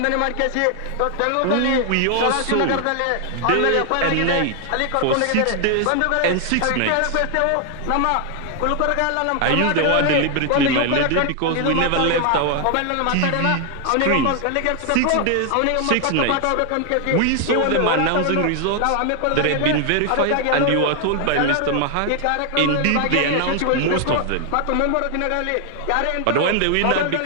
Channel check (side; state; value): both; different; correlation 0.00